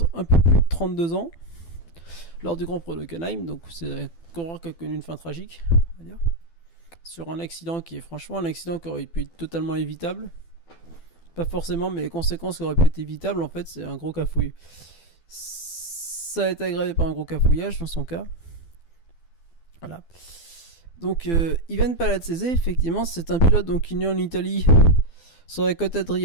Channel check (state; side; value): late; right; 12 ms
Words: peu plus de 32 ans lors du Grand Prix d'Hockenheim. Donc c'est un coureur qui a connu une fin tragique, on va dire, sur un accident qui est franchement un accident qui aurait pu être totalement évitable. Pas forcément, mais les conséquences qui auraient pu être évitables, en fait, c'est un gros cafouille. Ça a été aggravé par un gros cafouillage dans son cas. Voilà. Donc, Ivan Palazzese, effectivement, c'est un pilote donc, qui est né en Italie sur la côte